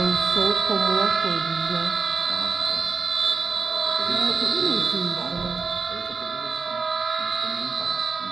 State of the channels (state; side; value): quieter; left; 4.7 dB